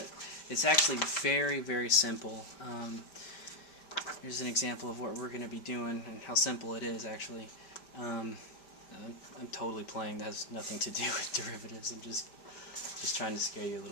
it's actually very, very simple. Here's an example of what we're going to be doing and how simple it is actually. I'm totally playing. That has nothing to do with derivatives. I'm just trying to scare you a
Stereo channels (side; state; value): right; late; 5.1 ms